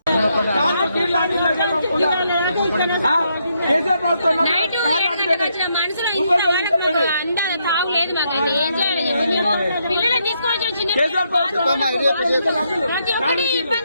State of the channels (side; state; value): both; inverted; correlation -0.77